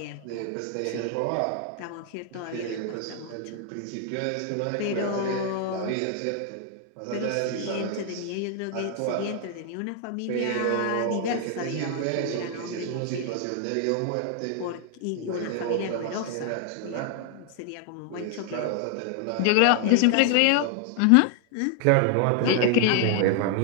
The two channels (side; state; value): both; different; correlation 0.00